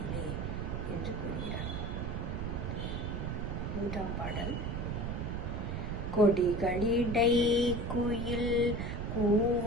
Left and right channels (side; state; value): right; noise; rumble, 3 dB below the sound